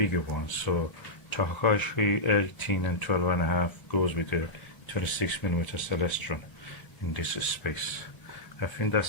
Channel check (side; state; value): right; late; 1.1 ms